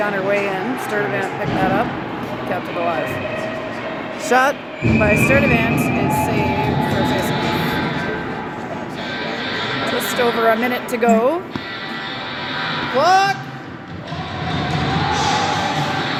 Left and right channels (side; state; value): both; identical; correlation 1.00